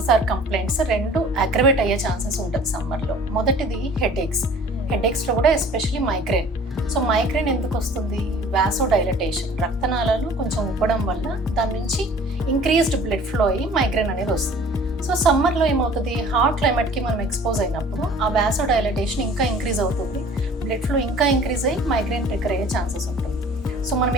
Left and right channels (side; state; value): both; normal; correlation 0.49